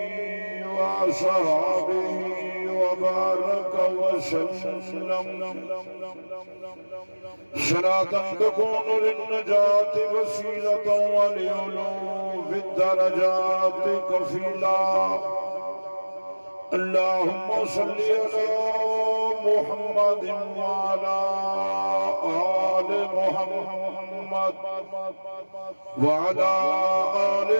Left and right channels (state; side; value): inverted; both; correlation -1.00